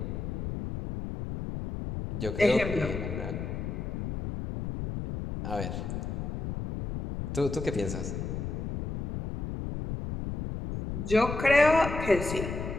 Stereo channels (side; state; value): left; noise; rumble, 5 dB below the sound